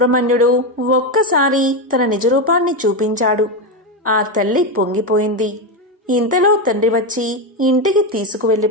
ఒక్కసారి తన నిజరూపాన్ని చూపించాడు. ఆ తల్లి పొంగిపోయింది. ఇంతలో తండ్రి వచ్చి ఇంటికి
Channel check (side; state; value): both; normal; correlation 0.11